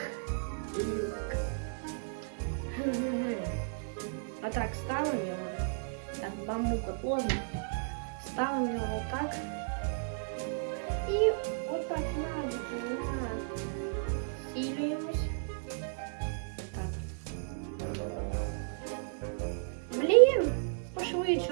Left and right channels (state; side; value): silent; left; digital silence